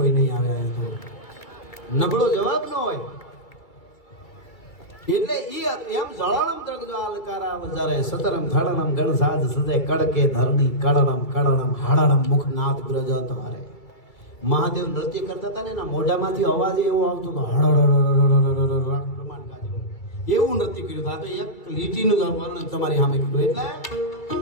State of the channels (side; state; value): right; late; 2.3 ms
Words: નહીં આવે. નબળો જવાબ ન હોય. એટલે ઈ એમ જળાણમ દ્રગજો આલકારા વજારે સતરમ ધડણમ ગણસાજ સજે કડકે ધરણી કડણમ કડણમ હાડણમ મુખ નાદ ગ્રજ તમારે. મહાદેવ નૃત્ય કરતા હતા ને, એના મોઢામાંથી અવાજ એવો આવતો હતો, હળહળ પ્રમાણ ગાજે એવું નૃત્ય કર્યું. આ તો એક લીટીનું વર્ણન તમારી સામે કીધું. એટલે